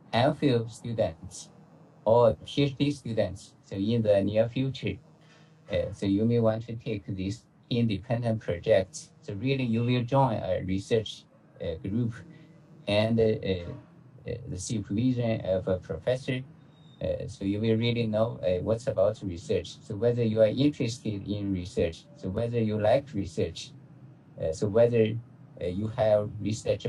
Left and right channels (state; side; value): identical; both; correlation 1.00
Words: MPhil student or PhD student, so in the near future, so you may want to take this independent project. So really you will join a research group and the supervision of a professor. So you will really know what's about research. So whether you are interested in research, so whether you like research, so whether you have research